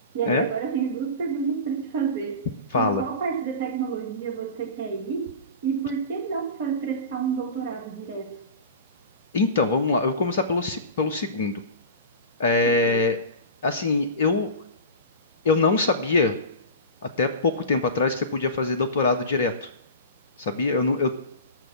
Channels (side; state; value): both; inverted; correlation -0.31